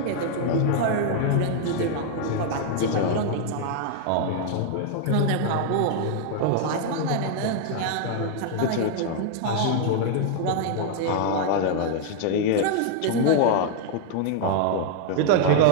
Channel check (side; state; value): both; different; correlation -0.01